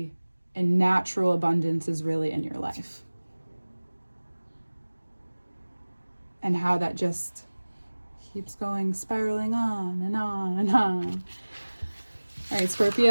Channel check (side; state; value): both; inverted; correlation -1.00